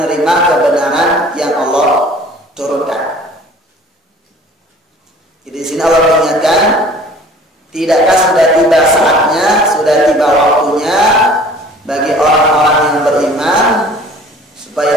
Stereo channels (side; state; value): both; normal; correlation 0.48